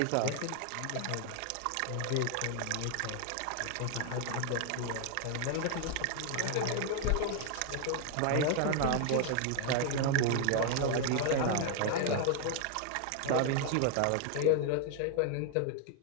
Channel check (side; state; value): both; different; correlation 0.00